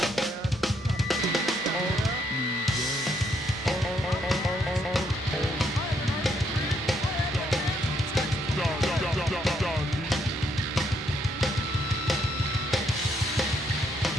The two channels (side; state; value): both; normal; correlation 0.73